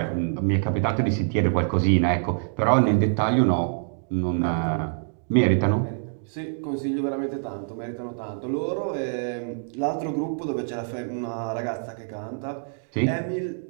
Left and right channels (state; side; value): silent; left; digital silence